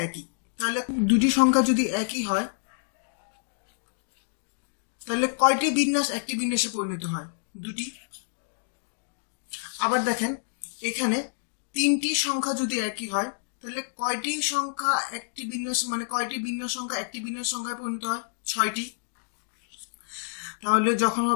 একই, তাহলে দুটি সংখ্যা যদি একই হয় তাহলে কয়টি বিন্যাস একটি বিন্যাসে পরিণত হয়? দুটি। আবার দেখেন এখানে 3টি সংখ্যা যদি একই হয় তাহলে কয়টি সংখ্যা একটি বিন্যাস মানে কয়টি বিন্যাস সংখ্যা একটি বিন্যাস সংখ্যায় পরিণত হয়? 6টি। তাহলে যখন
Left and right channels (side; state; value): right; silent; digital silence